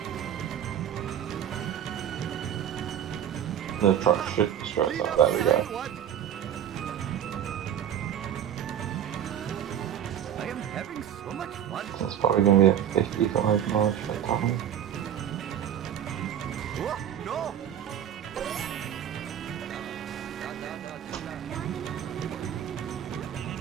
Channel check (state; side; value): quieter; left; 9.7 dB